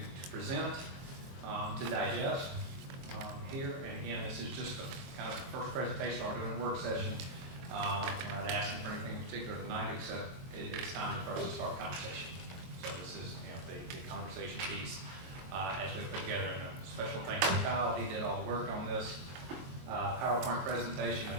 present, to digest here. And again, this is just the kind of first presentation. We're doing a work session. We're not asking for anything in particular tonight, except it's time for us to start conversation. So this is, the conversation piece as we put together. And a special thanks to Kyle. He did all the work on this PowerPoint presentation.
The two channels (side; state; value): left; late; 22 ms